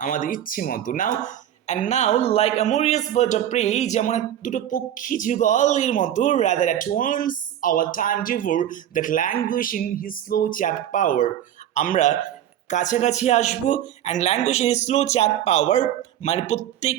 আমাদের ইচ্ছে মতো। Now and now like amorous bird of prey, যেমন দুটো পক্ষী যুগলের মতো, rather at once our time devour that language in his slow chap power, আমরা কাছাকাছি আসবো। And language in slow chap power মানে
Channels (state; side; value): quieter; left; 11.1 dB